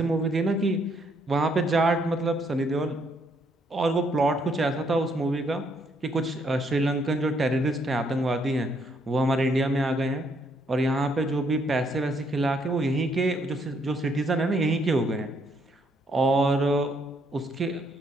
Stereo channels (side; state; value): both; normal; correlation 0.71